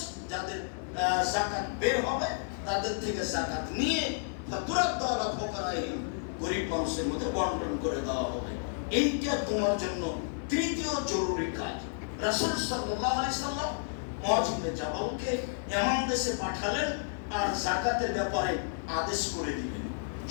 যাদের যাকাত বের হবে, তাদের থেকে যাকাত নিয়ে ফাতুরাদ্দু আলা ফুকারাহিম, গরীব মানুষের মধ্যে বন্টন করে দেওয়া হবে। এইটা তোমার জন্য তৃতীয় জরুরি কাজ। রাসূল সাল্লাল্লাহু আলাইহি সাল্লাম মুআয ইবনে জাবালকে এমন দেশে পাঠালেন আর যাকাতের ব্যাপারে আদেশ করে দিলেন।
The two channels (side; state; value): right; silent; 57 dB below the other